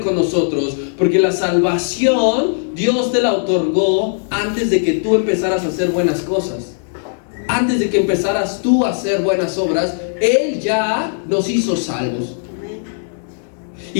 nosotros, porque la salvación Dios te la otorgó antes de que tú empezaras a hacer buenas cosas. Antes de que empezaras tú a hacer buenas obras, Él ya nos hizo salvos.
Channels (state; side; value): silent; right; digital silence